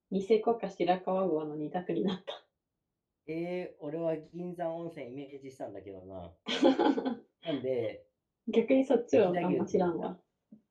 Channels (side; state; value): both; identical; correlation 1.00